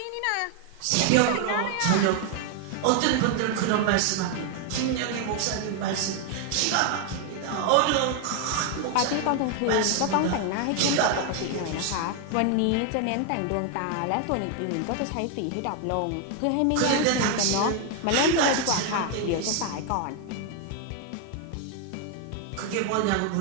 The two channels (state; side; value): different; both; correlation 0.00